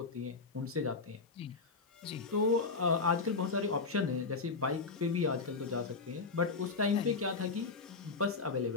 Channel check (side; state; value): right; quieter; 4.3 dB